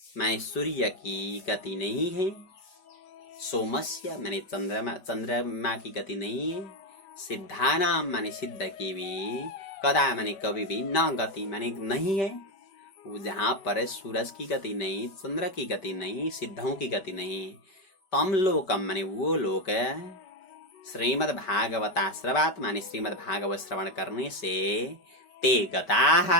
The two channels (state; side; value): late; right; 5.2 ms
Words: माने सूर्य की गति नहीं है, सोमस्य माने चंद्रमा की गति नहीं है, सिद्धानाम माने सिद्ध की भी, कदा माने कभी भी, न गति माने नहीं है, जहाँ पर सूरज की गति नहीं, चंद्र की गति नहीं, सिद्धों की गति नहीं, तम लोकम माने वो लोक, श्रीमद् भागवताश्रवात् माने श्रीमद् भागवत श्रवण करने से, ते